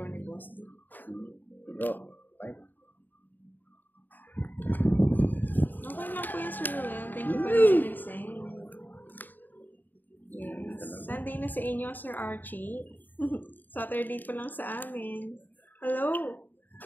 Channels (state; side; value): late; right; 0.089 ms